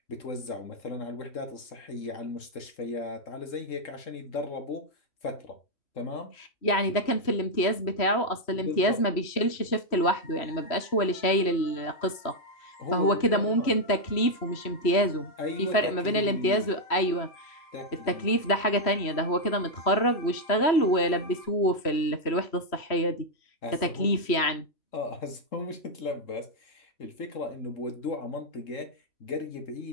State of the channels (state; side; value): late; right; 3.1 ms